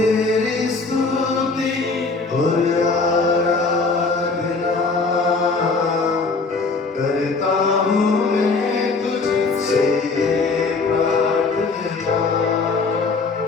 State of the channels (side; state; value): right; quieter; 4.0 dB